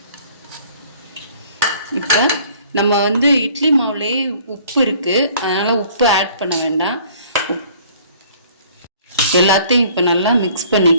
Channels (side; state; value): both; inverted; correlation -0.54